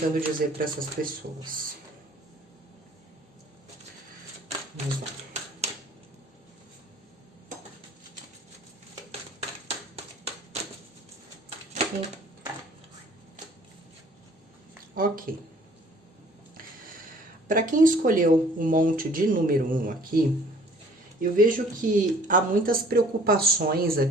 dizer para essas pessoas? Vamos lá. Ok. Para quem escolheu o monte de número 1 aqui, eu vejo que há muitas preocupações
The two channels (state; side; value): normal; both; correlation 0.54